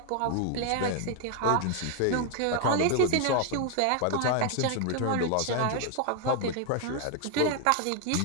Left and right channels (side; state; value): both; different; correlation 0.00